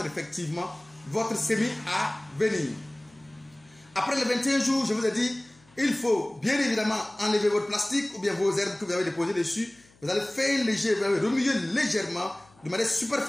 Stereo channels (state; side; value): noise; left; hum, 30 dB below the sound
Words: effectivement votre semis à venir. Après les 21 jours, je vous ai dit, il faut bien évidemment enlever votre plastique ou bien vos herbes que vous avez déposées dessus. Vous allez faire léger, vous allez remuer légèrement de manière